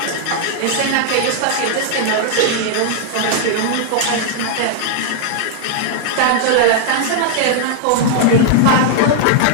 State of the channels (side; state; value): both; different; correlation 0.00